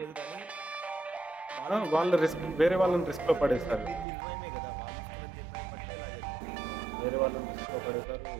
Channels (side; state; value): left; drops out; at 4.0 s